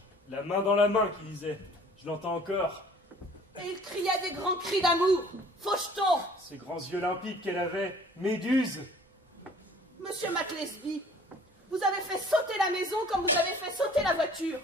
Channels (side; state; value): both; normal; correlation 0.52